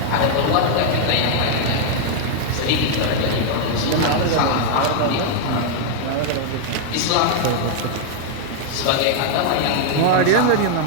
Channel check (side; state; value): both; different; correlation 0.00